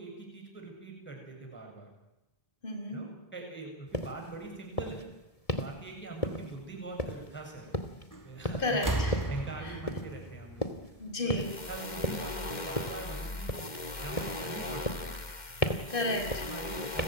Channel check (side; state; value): right; late; 2.1 ms